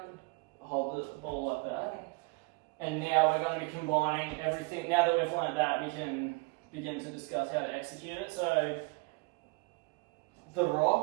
Hold the ball like that. Okay. And now we're going to be combining everything. Now that we've learnt that, we can begin to discuss how to execute it. So, the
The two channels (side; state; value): left; quieter; 28.9 dB